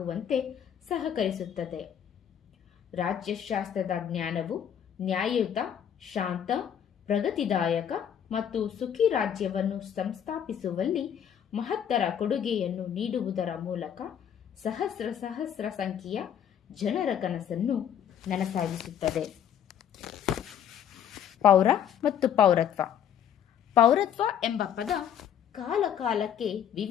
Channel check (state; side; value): quieter; right; 9.2 dB